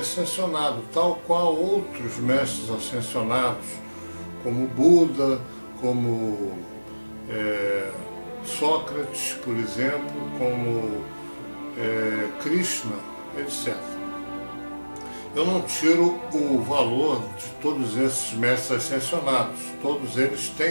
tal qual outros mestres ascensionados, como Buda, como Sócrates, por exemplo, como Krishna, etc. Eu não tiro o valor de todos esses mestres ascensionados. Todos eles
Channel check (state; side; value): inverted; both; correlation -1.00